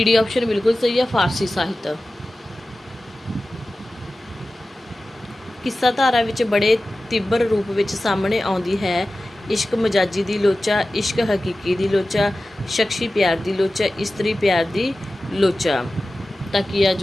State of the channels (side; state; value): both; normal; correlation 0.95